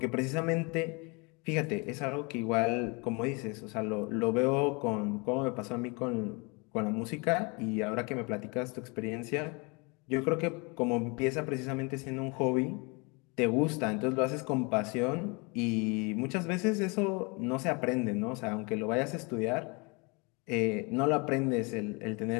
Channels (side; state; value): right; quieter; 29.8 dB